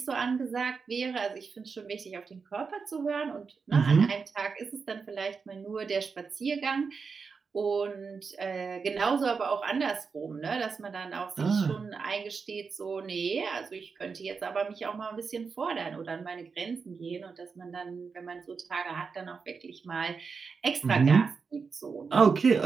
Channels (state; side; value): quieter; left; 5.2 dB